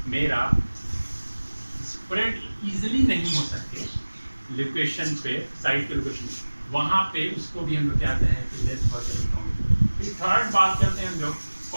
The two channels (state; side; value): inverted; both; correlation -1.00